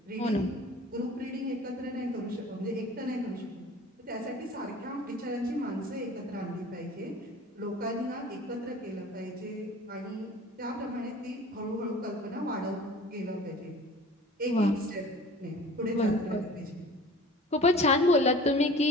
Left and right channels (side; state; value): both; normal; correlation 0.43